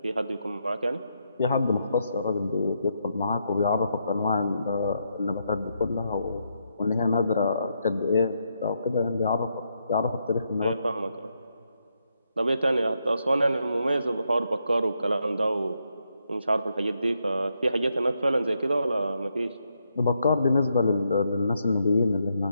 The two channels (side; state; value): both; inverted; correlation -0.80